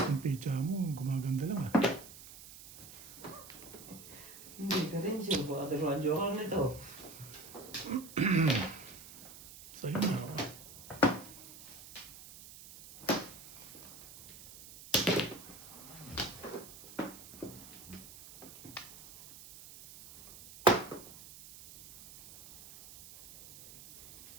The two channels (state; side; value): noise; right; hiss, 17 dB below the sound